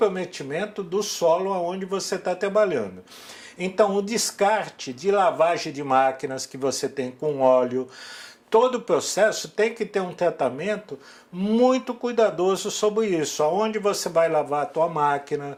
do solo onde você está trabalhando. Então o descarte de lavagem de máquinas que você tem com óleo, todo o processo tem que ter um tratamento muito cuidadoso sobre isso, aonde você vai lavar a tua máquina,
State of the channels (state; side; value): identical; both; correlation 1.00